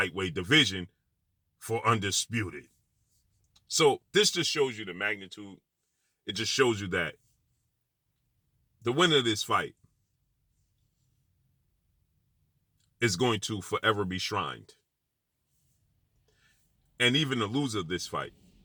division for undisputed. So this just shows you the magnitude. It just shows you that the winner of this fight is going to forever be shrined. And even the loser of this fight,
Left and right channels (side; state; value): both; identical; correlation 1.00